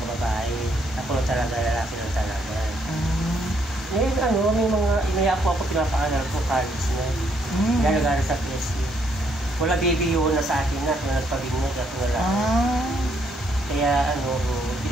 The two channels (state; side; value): normal; both; correlation 0.71